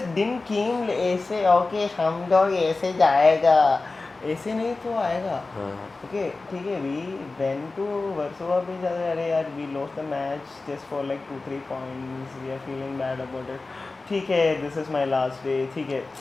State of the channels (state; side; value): quieter; right; 3.6 dB